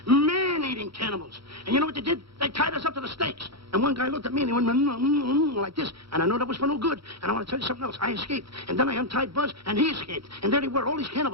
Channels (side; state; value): left; late; 0.75 ms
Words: Man-eating cannibals. And you know what they did? They tied us up to the stakes. And one guy looked at me and he went like this. And I know that was for no good. And I want to tell you something else. I escaped. And then I untied Buzz and he escaped. And there they were, all these